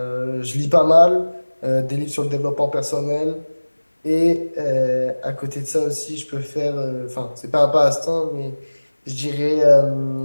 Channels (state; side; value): inverted; both; correlation -1.00